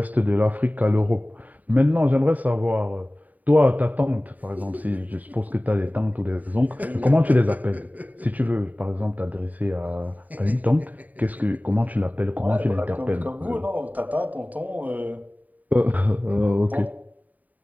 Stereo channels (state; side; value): late; left; 0.076 ms